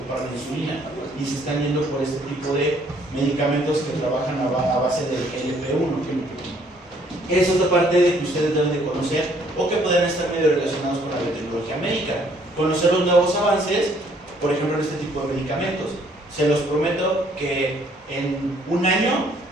la insulina y se están yendo por este tipo de medicamentos que trabajan a base del GLP-1. Eso es la parte de que ustedes deben de conocer, o que pueden estar medio relacionados con la biotecnología médica. Conocer los nuevos avances, por ejemplo, en este tipo de medicamentos. Se los prometo que en un año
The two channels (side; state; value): both; normal; correlation 0.64